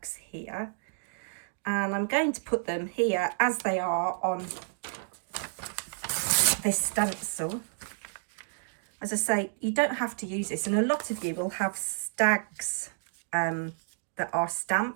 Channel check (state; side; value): silent; left; digital silence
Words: here, and I'm going to put them here as they are on this stencil. As I say, you don't have to use this, and a lot of you will have stags that are